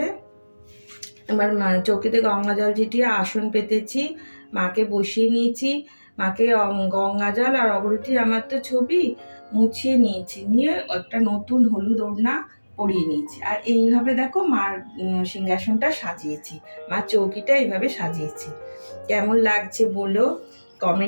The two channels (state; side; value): inverted; both; correlation -1.00